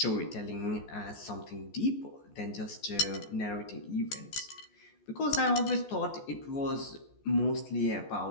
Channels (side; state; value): right; late; 14 ms